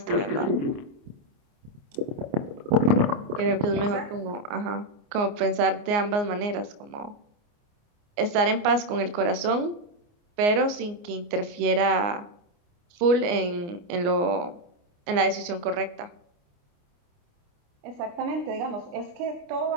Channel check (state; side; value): late; left; 29 ms